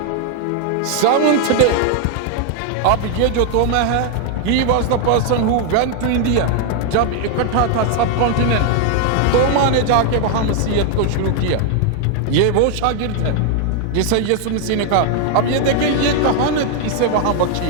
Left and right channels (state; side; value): different; both; correlation 0.00